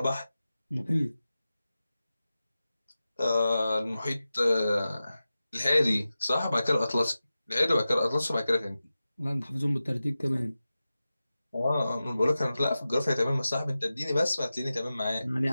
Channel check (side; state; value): both; inverted; correlation -0.94